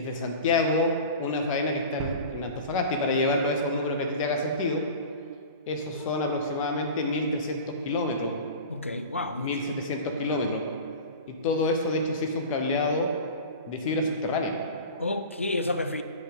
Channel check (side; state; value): both; inverted; correlation -0.35